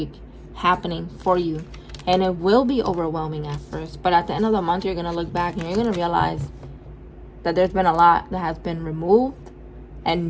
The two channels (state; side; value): identical; both; correlation 1.00